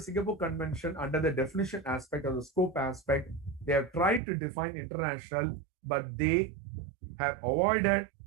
Singapore Convention, under the definition aspect or the scope aspect, they have tried to define international, but they have avoided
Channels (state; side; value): drops out; left; at 4.2 s